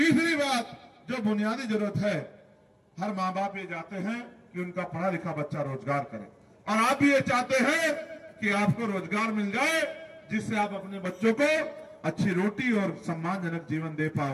बात, जो बुनियादी जरूरत है, हर माँ बाप ये चाहते हैं कि उनका पढ़ा लिखा बच्चा रोजगार करे, और आप भी ये चाहते हैं कि आपको रोजगार मिल जाए जिससे आप अपने बच्चों को अच्छी रोटी और सम्मानजनक जीवन दे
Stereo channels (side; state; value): both; identical; correlation 1.00